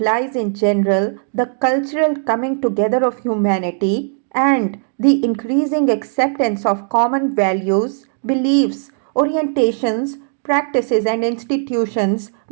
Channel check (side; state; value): left; silent; digital silence